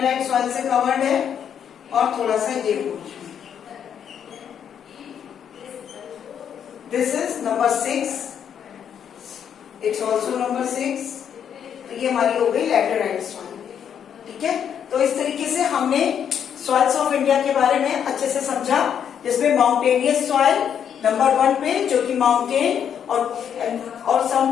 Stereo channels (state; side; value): quieter; right; 8.5 dB